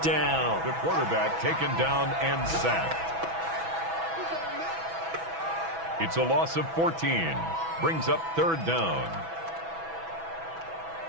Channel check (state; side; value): late; left; 6.1 ms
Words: down. The quarterback taken down and sacked. It's a loss of 14. Brings up 3rd down.